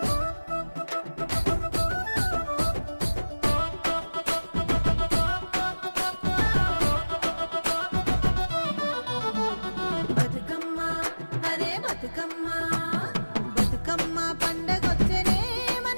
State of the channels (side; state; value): both; inverted; correlation -1.00